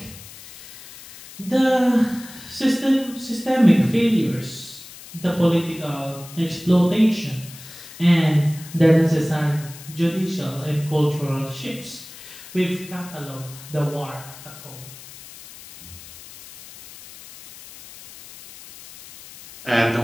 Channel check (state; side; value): noise; left; hiss, 17 dB below the sound